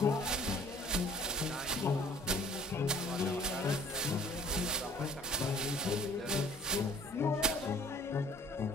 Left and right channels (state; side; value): normal; both; correlation 0.52